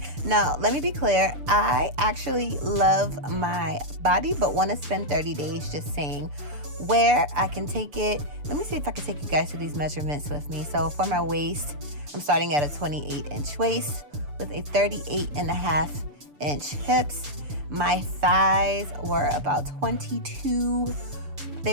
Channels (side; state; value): left; late; 6.9 ms